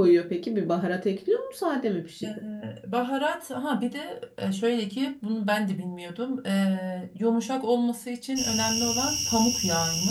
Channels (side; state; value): both; identical; correlation 1.00